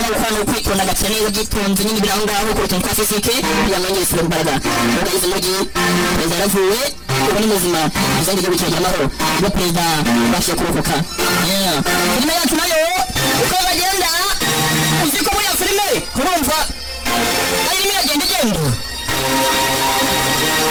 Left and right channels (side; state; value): both; identical; correlation 1.00